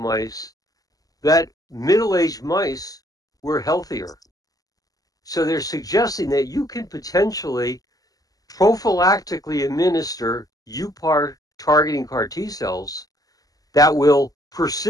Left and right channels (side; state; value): right; late; 0.17 ms